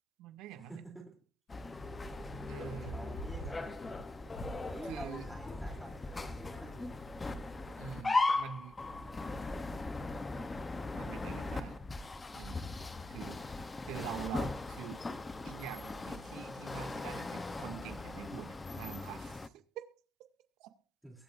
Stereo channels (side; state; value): both; normal; correlation 0.86